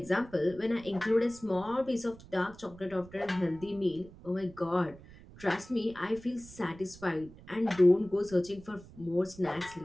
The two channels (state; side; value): noise; right; rumble, 20 dB below the sound